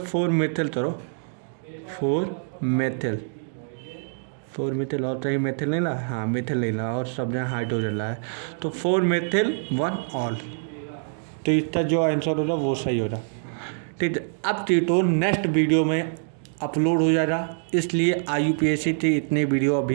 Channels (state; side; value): silent; left; digital silence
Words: 4 मिथिल करो, 4 मिथिल और कहीं मिथिल नहीं ला, हाँ मिथिल नहीं ला, और सब जहाँ हाइड्रोजन ला है, तो 4 मिथिल 1 ऑल। तो इसका जो आंसर होगा वो सही होगा, ठीक है। अब टीटो नेक्स्ट वीडियो में अपलोड हो जाएगा, इसलिए IUPAC की इतनी वीडियो